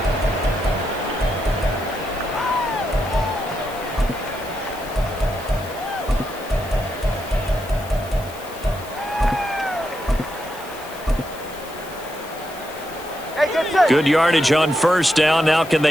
Good yardage on first down. Now can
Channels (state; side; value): noise; left; hiss, 18 dB below the sound